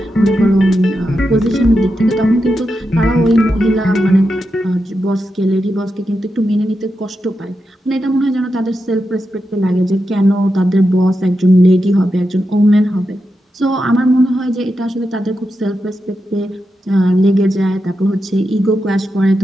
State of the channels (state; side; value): normal; both; correlation 0.88